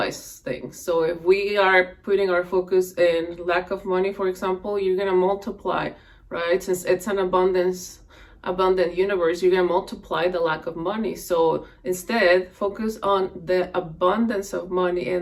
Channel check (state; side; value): identical; both; correlation 1.00